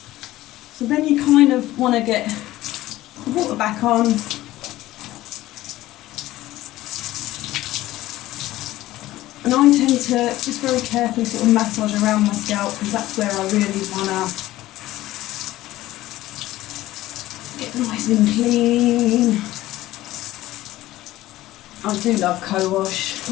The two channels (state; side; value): quieter; right; 16.0 dB